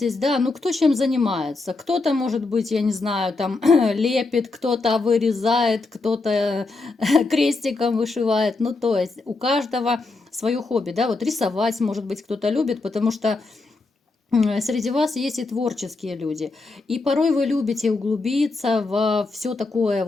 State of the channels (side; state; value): right; quieter; 3.6 dB